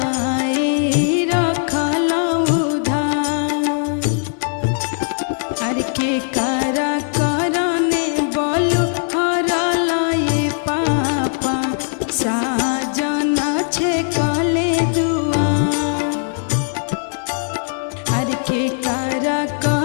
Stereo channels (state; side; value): silent; right; 66 dB below the other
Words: रखल उधार अरे के करा करने बोलू हरलाए पापा साजना छे कले दुआ अरे के करा